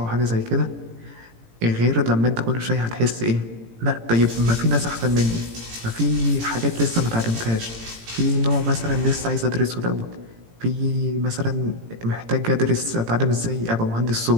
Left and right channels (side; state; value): left; late; 18 ms